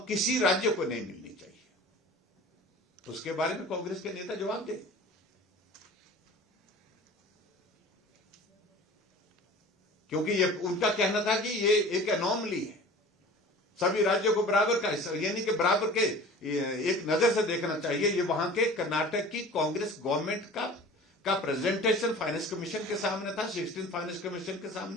किसी राज्य को नहीं मिलनी चाहिए। तो उसके बारे में कांग्रेस के नेता जवाब दे, क्योंकि ये उनका कहना था कि ये एक एनोमली है, सभी राज्यों को बराबर का, यानी कि बराबर के एक नजर से देखना चाहिए। ये वहां के कर्नाटक की कांग्रेस गवर्नमेंट का प्रेजेंटेशन फाइनेंस कमीशन के सामने था, 16 फाइनेंस कमीशन के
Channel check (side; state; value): both; normal; correlation 0.41